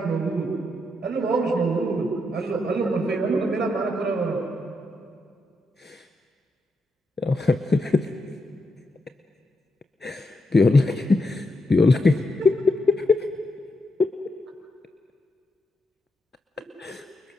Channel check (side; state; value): both; normal; correlation 0.82